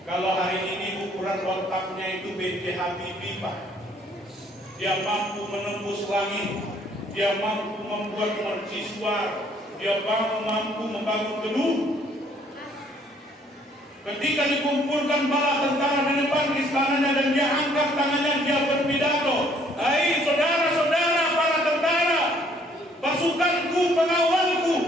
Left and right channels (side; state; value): both; normal; correlation 0.62